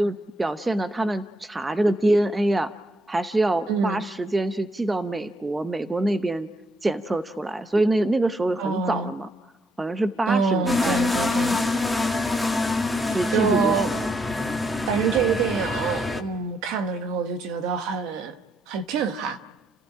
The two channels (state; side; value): normal; both; correlation 0.76